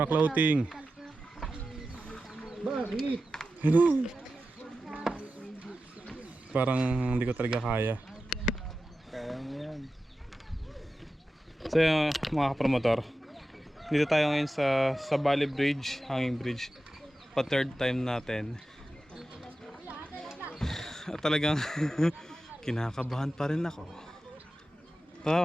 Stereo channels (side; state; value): both; normal; correlation 0.93